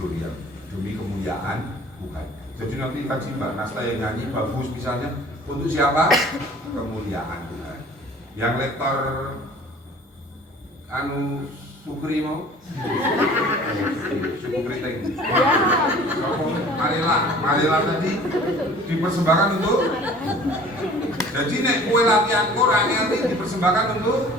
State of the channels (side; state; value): both; normal; correlation 0.48